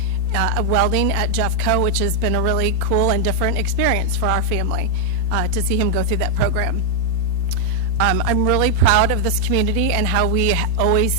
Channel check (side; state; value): left; late; 4.4 ms